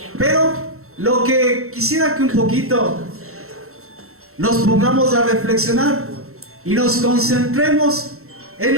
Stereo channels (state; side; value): late; left; 0.63 ms